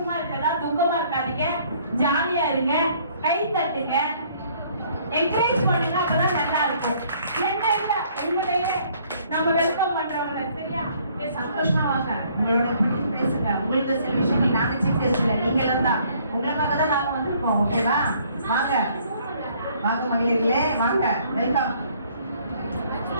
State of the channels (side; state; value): both; inverted; correlation -0.61